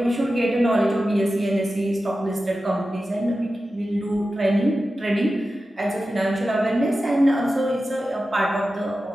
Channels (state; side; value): normal; both; correlation 0.93